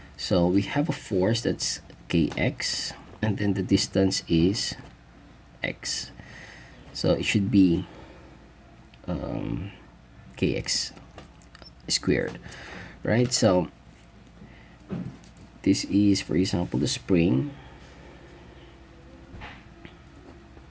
So we have a force that's kx, and then the distance is x. So it should be kx squared, right? So this is, for example, the spring.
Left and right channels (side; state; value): both; identical; correlation 1.00